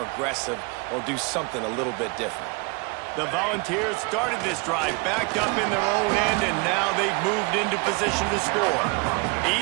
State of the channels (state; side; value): quieter; left; 30.2 dB